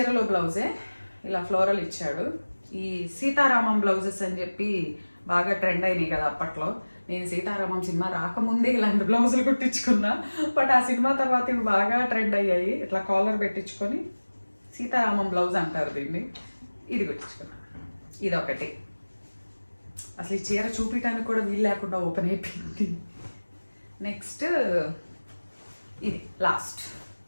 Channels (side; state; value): both; inverted; correlation -1.00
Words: బ్లౌజే ఇలా ఫ్లోరల్ ఇచ్చాడు. ఈ సీతారామం బ్లౌజెస్ అని చెప్పి బాగా ట్రెండ్ అయినాయి కదా అప్పట్లో. నేను సీతారామం సినిమా రాకముందే ఇలాంటి బ్లౌజులు కుట్టించుకున్నా, బట్ ఆ సినిమా తర్వాత ఇవి బాగా ట్రెండ్ అయ్యాయి. ఇట్లా కాలర్ పెట్టించుకొని సీతారామం బ్లౌజ్ అంటారు దీన్ని. ఇది కుట్టించుకున్నా. ఇదొకటి. అసలు ఈ చీర చూపించడానికి కూడా వీలు లేకుండా ఓపెన్ అయిపోయింది. నెక్స్ట్ ఇది లాస్ట్.